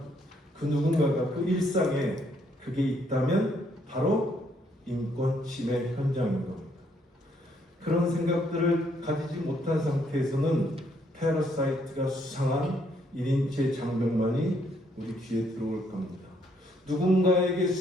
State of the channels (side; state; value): both; normal; correlation 0.71